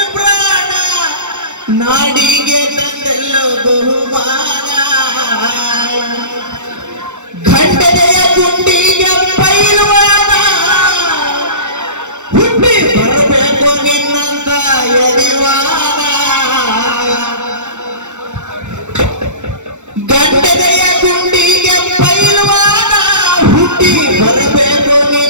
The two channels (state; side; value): late; left; 0.84 ms